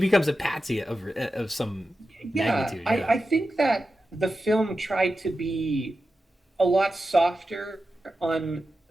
a patsy of some Yeah, magnitude. I, Yeah. I think that the film tried to be a lot softer on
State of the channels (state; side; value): normal; both; correlation 0.91